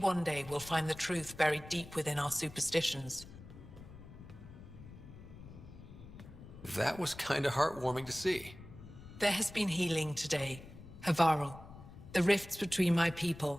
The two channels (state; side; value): noise; left; rumble, 16 dB below the sound